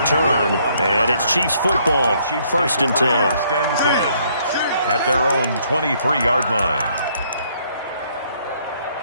And it's Chiefs football, 1st and 10. At their own 23-yard line.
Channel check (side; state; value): both; inverted; correlation -0.67